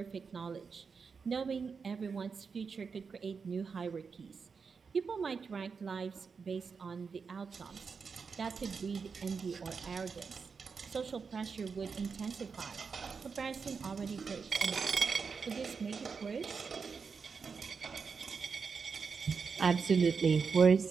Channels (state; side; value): quieter; left; 5.4 dB